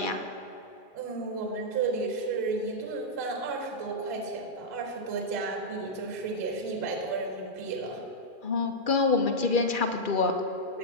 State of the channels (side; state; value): right; late; 2.4 ms